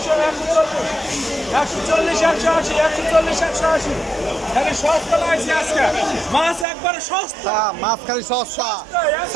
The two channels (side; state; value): left; drops out; at 6.7 s